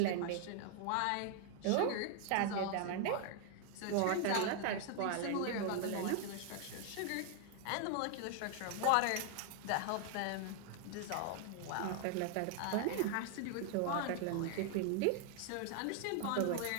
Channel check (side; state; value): both; different; correlation 0.00